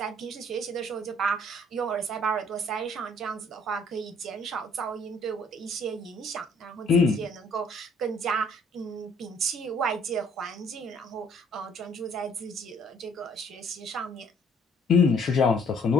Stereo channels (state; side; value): normal; both; correlation 0.61